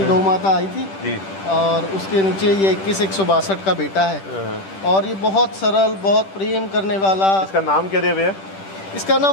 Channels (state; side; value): late; right; 10 ms